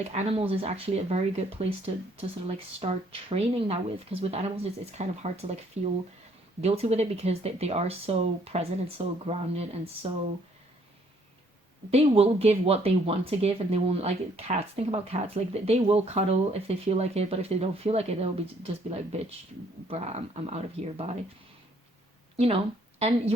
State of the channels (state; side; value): normal; both; correlation 0.65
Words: animals is actually a very good place to sort of like start training that with, because with animals it's kind of hard to like feel guilty with it, because they are so present and so grounded, and so they will give what they want to give, and they won't, like cats. Think about cats. Like, they will cuddle if they feel like it, but if they don't feel like it, they'll just be like, bitch, bruh, I'm out of here, bye. You know, and